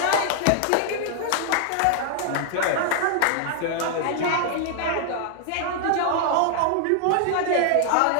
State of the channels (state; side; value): different; both; correlation -0.01